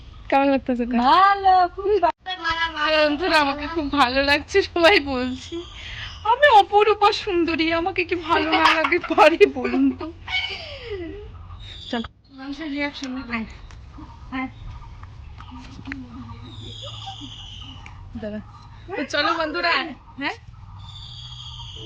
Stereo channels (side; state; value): both; identical; correlation 1.00